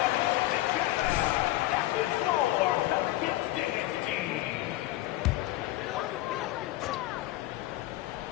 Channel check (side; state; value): right; quieter; 16.6 dB